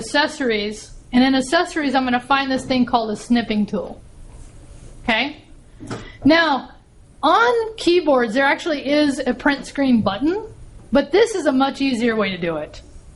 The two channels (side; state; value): both; identical; correlation 1.00